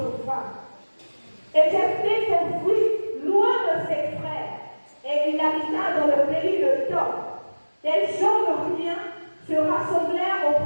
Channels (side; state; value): both; inverted; correlation -1.00